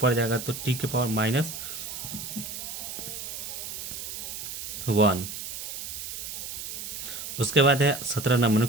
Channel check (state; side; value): noise; right; hiss, 7 dB below the sound